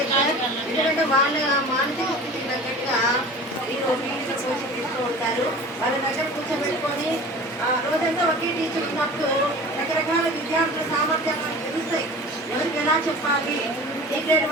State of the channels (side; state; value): both; normal; correlation 0.40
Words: సార్. ఎందుకంటే వాళ్ళ మానసిక స్థితికి తగ్గట్టుగా మీరు ఫీజు కోచింగ్ తీస్తూ ఉంటారు. వాళ్ళ దగ్గర కూర్చోబెట్టుకొని రోజంతా ఒకే టీచర్ ఉన్నప్పుడు రకరకాల విద్యార్థుల సామర్థ్యాలు తెలుస్తాయి. ఎవరికి ఎలా చెప్పాలి, ఏ గ్రేడ్